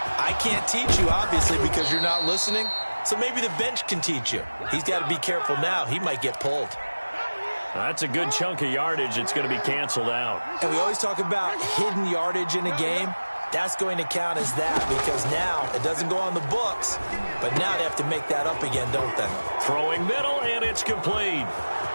I can't teach you, obviously, because you're not listening. So maybe the bench can teach you. He's got to be careful now. He might get pulled. That's a good chunk of yardage. It's going to be canceled out. And we always talk about hidden yardage in a game. That's going to count as that because now it doesn't go on the books, but now they have to make that up again, don't they? Throwing middle, and it's complete.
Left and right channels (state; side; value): inverted; both; correlation -1.00